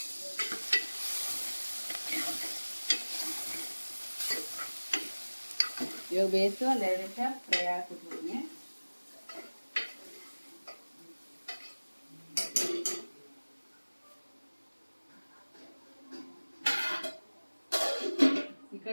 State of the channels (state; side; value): inverted; both; correlation -1.00